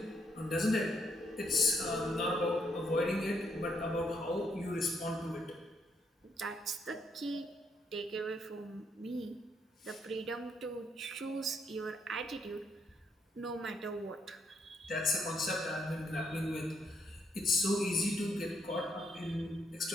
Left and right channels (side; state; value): both; normal; correlation 0.74